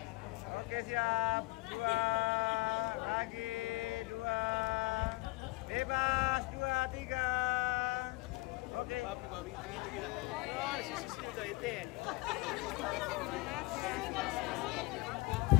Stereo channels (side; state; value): right; quieter; 23.4 dB